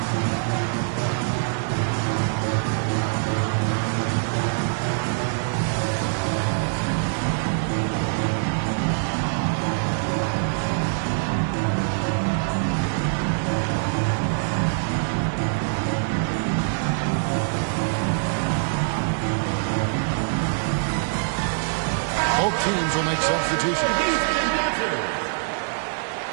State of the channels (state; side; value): silent; left; 57 dB below the other